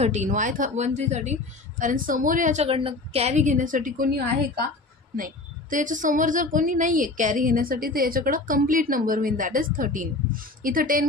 1 3 13 कारण समोर याच्याकडनं कॅरी घेण्यासाठी कोणी आहे का, नाही. तर याच्यासमोर जर कोणी नाही आहे कॅरी घेण्यासाठी तर याच्याकडं कंप्लीट नंबर होईल, दॅट इज 13. इथं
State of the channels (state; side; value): quieter; right; 3.2 dB